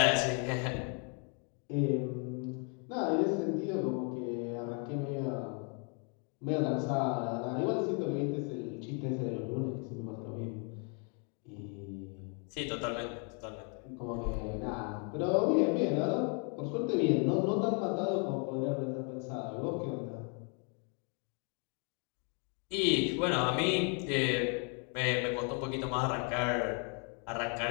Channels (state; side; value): quieter; right; 38.6 dB